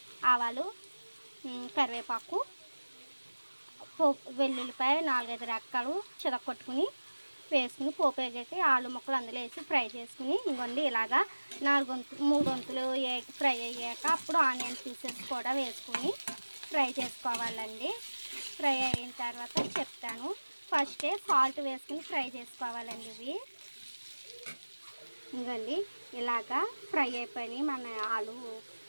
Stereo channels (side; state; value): both; inverted; correlation -1.00